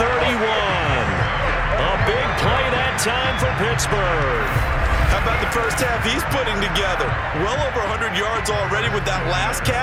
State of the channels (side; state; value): both; identical; correlation 1.00